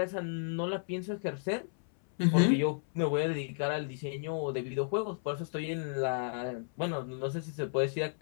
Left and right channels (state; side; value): silent; right; 56 dB below the other